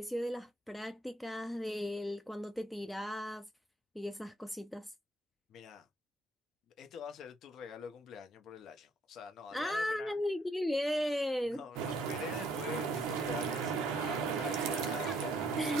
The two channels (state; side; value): normal; both; correlation 0.67